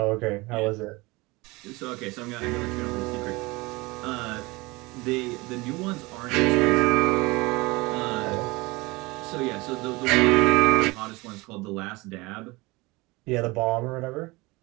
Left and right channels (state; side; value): quieter; left; 23.3 dB